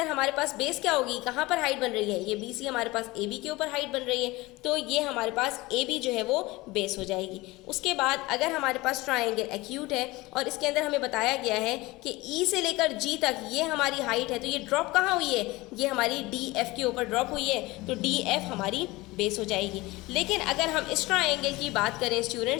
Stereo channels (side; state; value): right; quieter; 21.1 dB